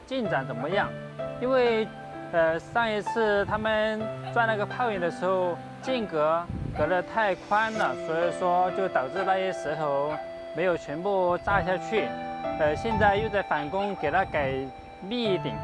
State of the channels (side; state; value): both; identical; correlation 1.00